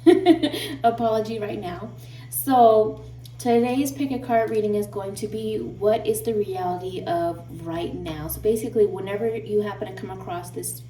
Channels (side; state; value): both; identical; correlation 1.00